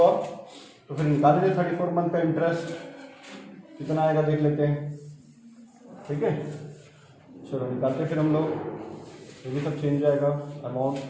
तो फिर निकाल लीजिए 34 मंथ का इंटरेस्ट कितना आएगा देख लेते हैं। ठीक है, चलो निकालते हैं फिर हम लोग, ये भी सब चेंज जाएगा। अमाउंट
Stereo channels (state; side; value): identical; both; correlation 1.00